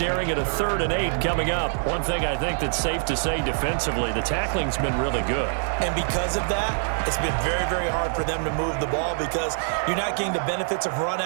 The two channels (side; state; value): left; silent; digital silence